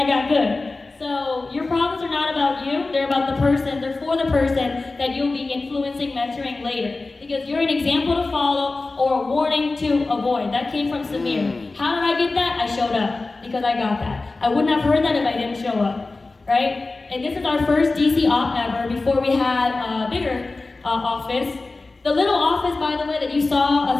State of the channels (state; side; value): quieter; right; 3.5 dB